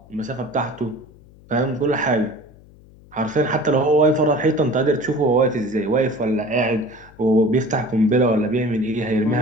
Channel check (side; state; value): left; noise; hum, 24 dB below the sound